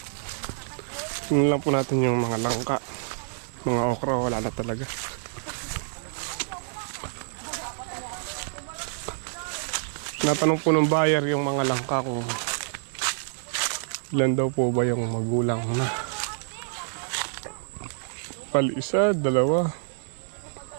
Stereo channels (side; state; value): left; silent; digital silence